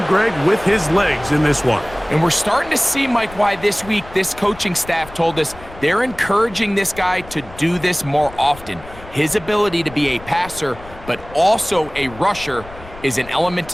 Greg, with his legs in this one. And we're starting to see, Mike, why this week this coaching staff told us they're encouraging this guy to do this more often. His ability to be a passer, but also a rusher, is an element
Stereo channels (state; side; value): noise; left; rumble, 18 dB below the sound